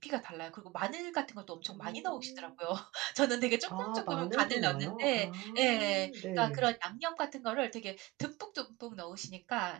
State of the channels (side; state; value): left; quieter; 21.2 dB